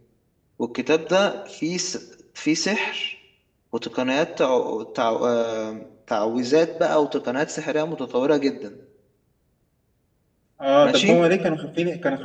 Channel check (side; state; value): both; identical; correlation 1.00